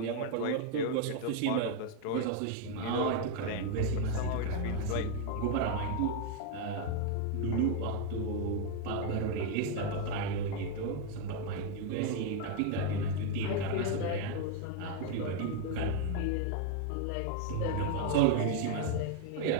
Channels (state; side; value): different; both; correlation 0.00